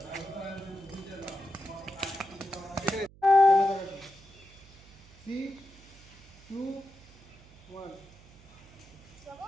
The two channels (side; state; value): right; noise; hum, 23 dB below the sound